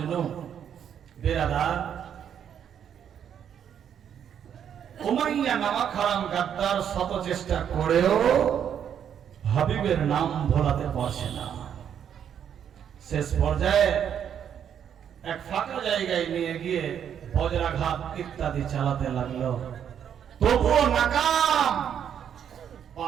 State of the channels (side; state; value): left; quieter; 8.8 dB